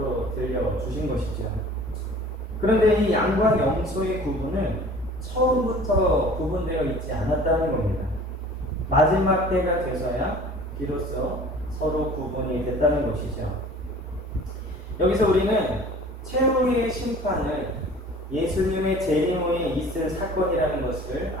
들려주신 것이죠. 그런데 이 양과 염소의 구분은 처음부터 구분되어 있지 않았다는 겁니다. 마지막 때가 돼서야 비로소 서로 구분이 됐다는 것이죠. 여기서 우리는 최후의 심판을 예수님의 재림 후에 있을 사건이라는 것을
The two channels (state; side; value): normal; both; correlation 0.46